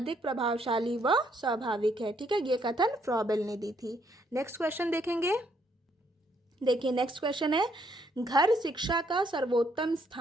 प्रभावशाली व स्वाभाविक है। ठीक है, ये कथन फ्रॉबेल ने दी थी। नेक्स्ट क्वेश्चन देखेंगे। देखिए नेक्स्ट क्वेश्चन है, घर शिक्षा का सर्वोत्तम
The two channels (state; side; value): normal; both; correlation 0.71